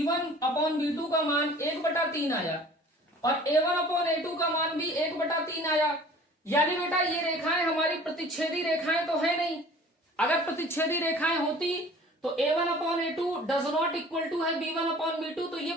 का मान 1/3 आया और a1/a2 का मान भी 1/3 आया। यानी बेटा ये रेखाएं हमारी प्रतिच्छेदी रेखाएं तो है नहीं, अगर प्रतिच्छेदी रेखाएं होती तो a1/a2 does not equal to है b1/b2, तो ये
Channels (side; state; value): both; normal; correlation 0.47